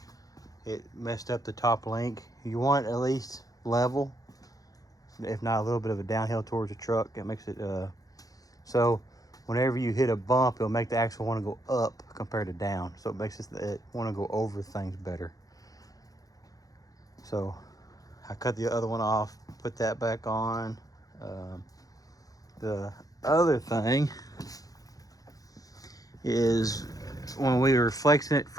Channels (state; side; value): late; right; 0.17 ms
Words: It messed up the top link. You want at least level, if not a little bit of a downhill towards the truck. It makes it so whenever you hit a bump, it'll make the axle want to go up compared to down. So it makes it want to go over things better. So I cut the other one off, put that back on. The other thing is when we were flexing it